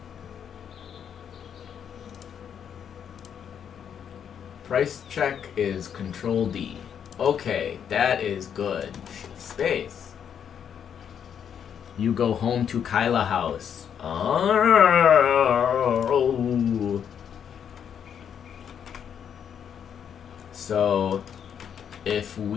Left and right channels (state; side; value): quieter; right; 8.2 dB